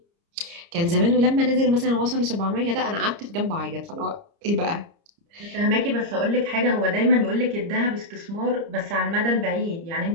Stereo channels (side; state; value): left; late; 30 ms